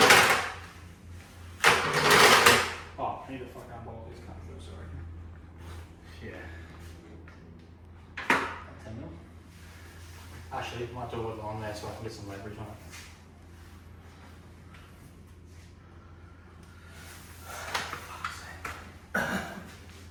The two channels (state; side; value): identical; both; correlation 1.00